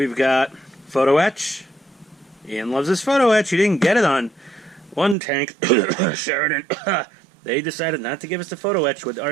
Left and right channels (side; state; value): left; drops out; at 5.2 s